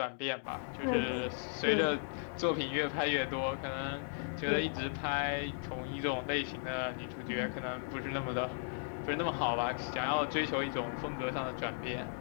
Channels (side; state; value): right; silent; digital silence